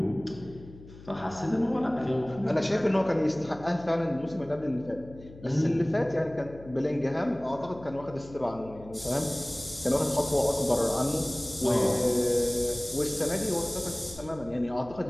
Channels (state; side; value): noise; left; hum, 18 dB below the sound